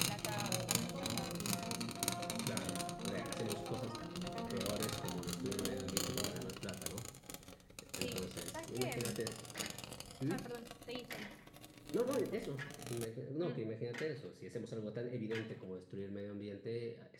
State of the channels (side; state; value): both; identical; correlation 1.00